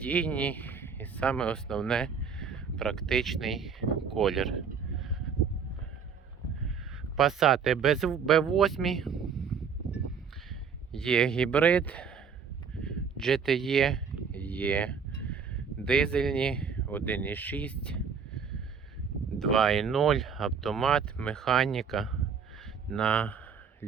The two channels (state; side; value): quieter; left; 6.3 dB